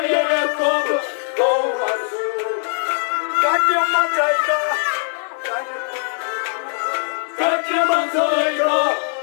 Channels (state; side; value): silent; right; digital silence